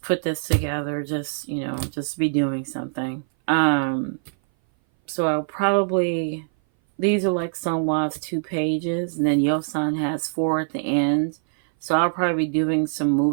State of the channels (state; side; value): silent; left; 58 dB below the other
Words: put this together, just be doing something. So I'll probably, these are like Sunghwa's 2 pages, and then Yeosang has 4 at the end. So I'll probably be doing some